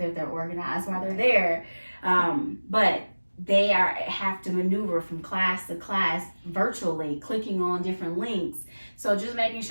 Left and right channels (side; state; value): both; inverted; correlation -1.00